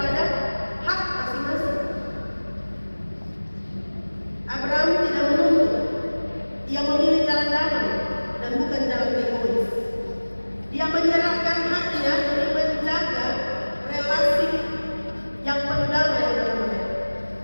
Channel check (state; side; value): inverted; both; correlation -1.00